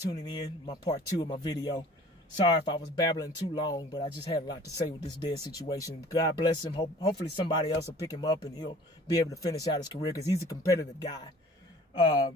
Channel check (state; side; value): normal; both; correlation 0.49